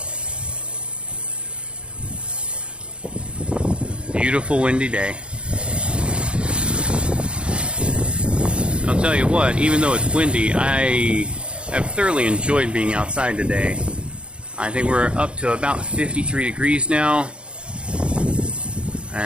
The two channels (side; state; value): left; late; 0.056 ms